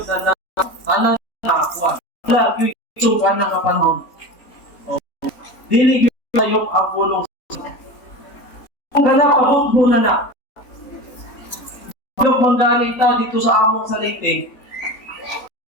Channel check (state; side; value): late; right; 3.9 ms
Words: na tanan na wala yung isukan na kapanahon. Dili yung tayo ang bulong. Kung ganap, abot mo na. Yung manggaling ta dito sa among sa Leyte,